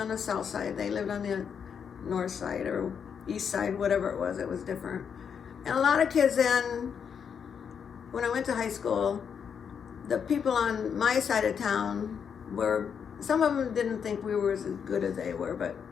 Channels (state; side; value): quieter; right; 7.1 dB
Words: the south side. They lived on the north side or east side, whatever it was different. And a lot of kids then, when I went to high school, the people on my side of town some of them didn't think we were as good as they were, but